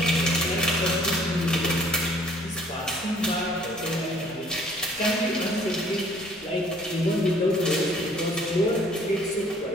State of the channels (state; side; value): normal; both; correlation 0.58